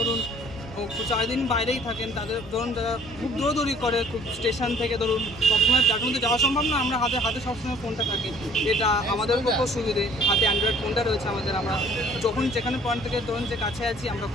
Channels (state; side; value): normal; both; correlation 0.54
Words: 4 দিন বাইরেই থাকেন, তাদের ধরুন যারা খুব দৌড়দৌড়ি করে, খুব স্টেশন থেকে ধরুন সবসময় যার মধ্যে যাওয়া সম্ভব না, আমরা হাতে সবসময় ফোনটা থাকে, এটা আমাদের পক্ষেও সুবিধে। হাতে অ্যান্ড্রয়েড ফোনটা রয়েছে আমাদের, আমরা যখন যেখানে পয়েন্ট থেকে ধরুন যে কাছে আছি আমরা